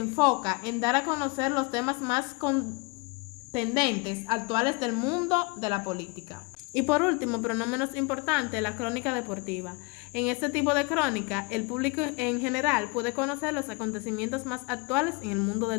en dar a conocer los temas más contendentes actuales del mundo de la política. Y por último, pero no menos importante, la crónica deportiva. En este tipo de crónica, el público en general puede conocer los acontecimientos más actuales en el mundo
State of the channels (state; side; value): quieter; right; 28.2 dB